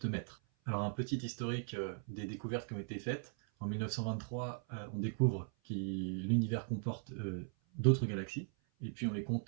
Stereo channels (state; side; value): silent; left; 52 dB below the other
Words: maître. Alors un petit historique des découvertes qui ont été faites. En 1923, on découvre que l'univers comporte d'autres galaxies, et puis on les